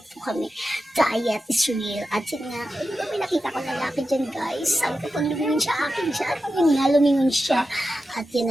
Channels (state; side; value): normal; both; correlation 0.91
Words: po kami. Diet is real. At yun nga, may nakita ko lalaki dyan, guys. Sabi ko, pag lumingon siya, akin siya. At yun nga, lumingon siya. At yun